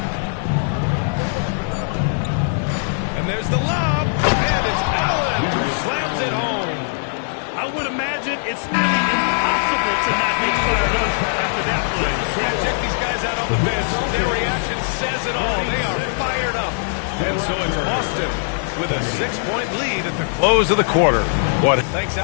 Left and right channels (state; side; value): silent; right; digital silence